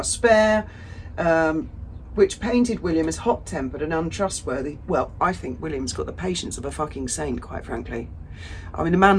spare, which painted William as hot-tempered and untrustworthy. Well, I think William's got the patience of a fucking saint, quite frankly. I mean, the man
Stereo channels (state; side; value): identical; both; correlation 1.00